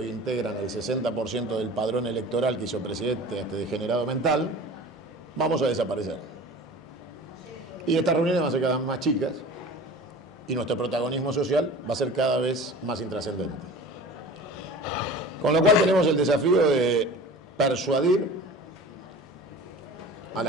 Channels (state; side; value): normal; both; correlation 0.39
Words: integran el 60% del padrón electoral que hizo presidente a este degenerado mental, vamos a desaparecer. Y estas reuniones van a ser cada vez más chicas y nuestro protagonismo social va a ser cada vez más intrascendente. Con lo cual tenemos el desafío de persuadir a